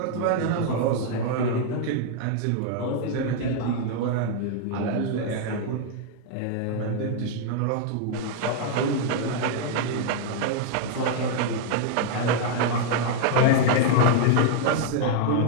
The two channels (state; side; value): different; both; correlation 0.00